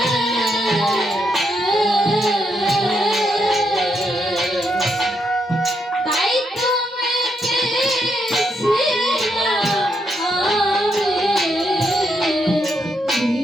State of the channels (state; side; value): normal; both; correlation 0.79